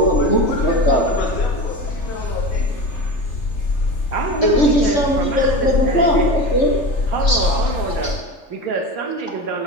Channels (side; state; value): right; late; 3.4 ms